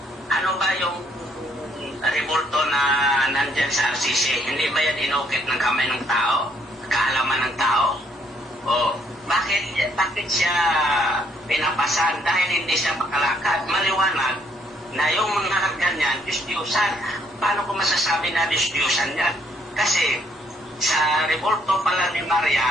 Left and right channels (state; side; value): normal; both; correlation 0.68